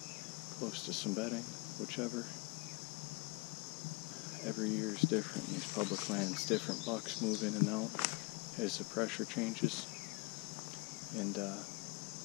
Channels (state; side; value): quieter; right; 26.5 dB